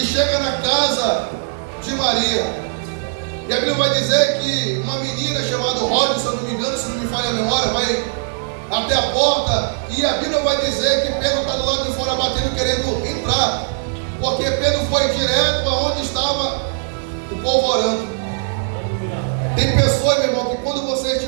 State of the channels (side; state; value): left; silent; digital silence